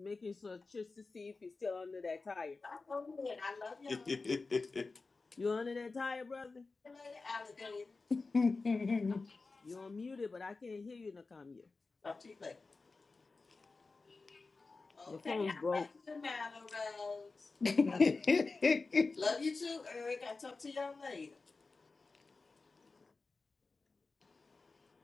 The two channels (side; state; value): right; quieter; 3.9 dB